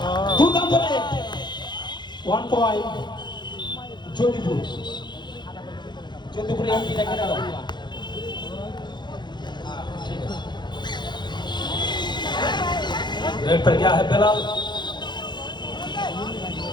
দুর্দান্ত রেড 1 পয়েন্ট যোধপুর এমপি দেখে দাও रेड पर गया है बिलाल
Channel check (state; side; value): late; right; 0.21 ms